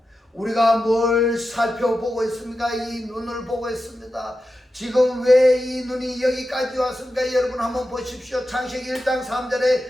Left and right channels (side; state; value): both; normal; correlation 0.91